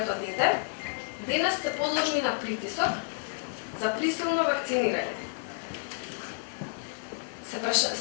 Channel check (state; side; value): silent; right; 58 dB below the other